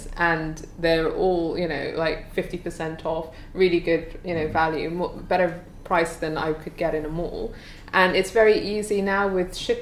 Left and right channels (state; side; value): identical; both; correlation 1.00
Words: and they're all like 50% off, really good value, better price than I could get in a mall. And it's very easy now with